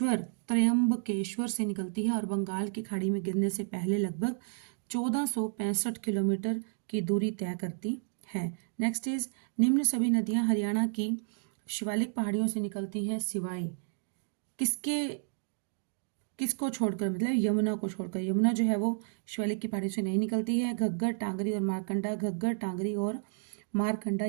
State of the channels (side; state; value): left; silent; digital silence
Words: से निकलती है और बंगाल की खाड़ी में गिरने से पहले लगभग 1465 किलोमीटर की दूरी तय करती है। नेक्स्ट इज निम्न सभी नदियां हरियाणा की शिवालिक पहाड़ियों से निकलती हैं सिवाय किसको छोड़कर, मतलब यमुना को छोड़कर। यमुना जो है वो शिवालिक की पहाड़ियों से नहीं निकलती है। घग्गर, टांगरी और मारकंडा, घग्गर, टांगरी और मारकंडा